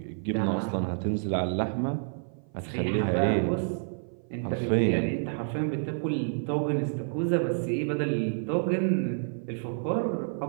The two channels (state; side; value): silent; left; 56 dB below the other